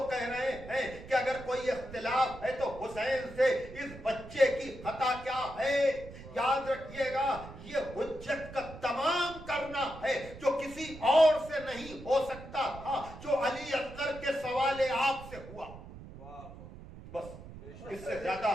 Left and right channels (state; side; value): noise; right; rumble, 15 dB below the sound